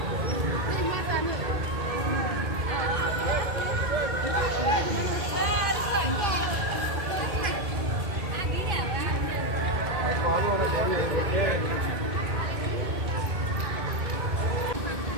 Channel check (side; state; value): left; late; 2.2 ms